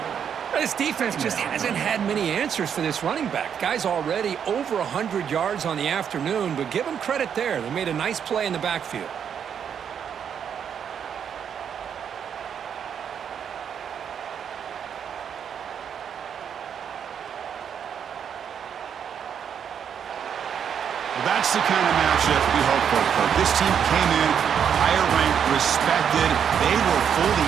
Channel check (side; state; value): left; quieter; 8.0 dB